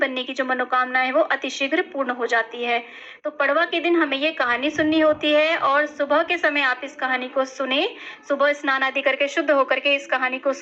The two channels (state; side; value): identical; both; correlation 1.00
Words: की जो मनोकामना है वो अतिशीघ्र पूर्ण हो जाती है। तो पड़वा के दिन हमें ये कहानी सुननी होती है और सुबह के समय आप इस कहानी को सुने। सुबह स्नान आदि करके शुद्ध होकर के इस कहानी को